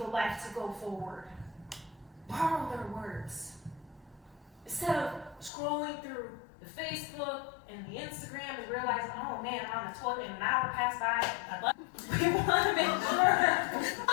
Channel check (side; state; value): right; drops out; at 5.5 s